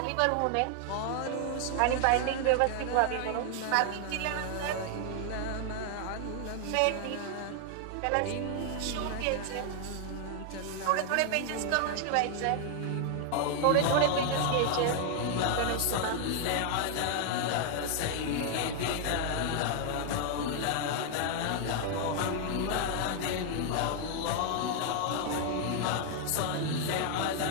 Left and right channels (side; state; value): both; different; correlation 0.00